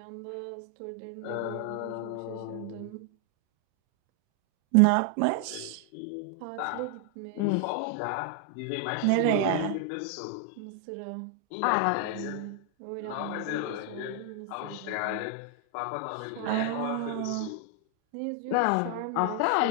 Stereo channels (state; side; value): different; both; correlation 0.00